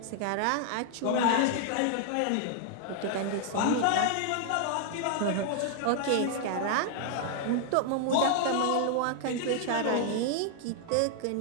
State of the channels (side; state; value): both; different; correlation 0.00